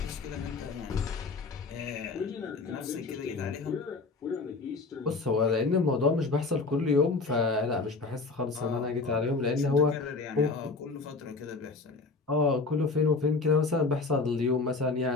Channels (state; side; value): quieter; right; 3.9 dB